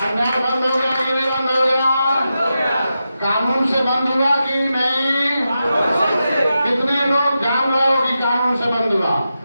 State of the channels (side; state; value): both; inverted; correlation -0.89